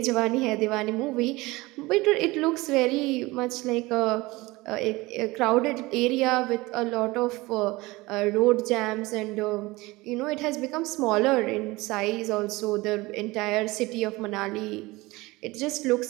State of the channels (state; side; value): quieter; left; 21.4 dB